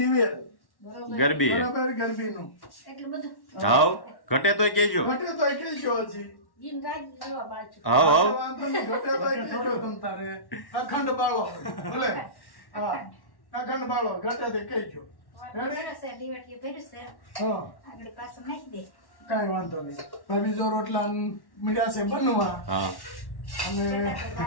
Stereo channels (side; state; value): right; late; 1.1 ms